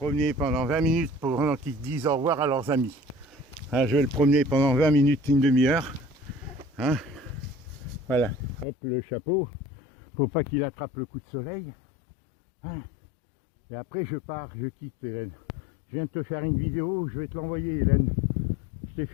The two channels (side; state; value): right; drops out; at 8.7 s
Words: pendant 20 minutes pendant qu'ils disent au revoir à leurs amis. Hein, je vais le promener pendant 20 minutes, une demi-heure. Hein, voilà, hop, le chapeau. Faut pas qu'il attrape le coup de soleil. Hein, et après je pars, je quitte Hélène. Je viens de te faire une vidéo, je vais te l'envoyer Hélène. Je t'ai